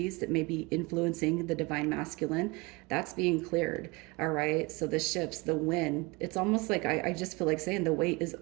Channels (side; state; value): left; quieter; 25.9 dB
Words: that may be influencing the divine masculine, that's being cleared. All right. So the ships, the wind, it's almost like I just feel like saying the wait is